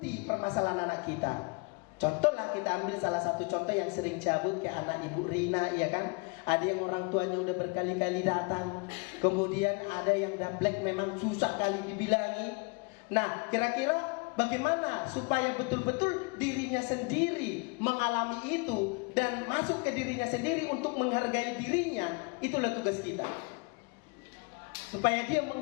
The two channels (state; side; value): quieter; right; 30.6 dB